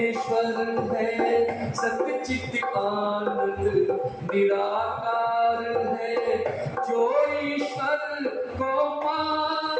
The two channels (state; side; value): identical; both; correlation 1.00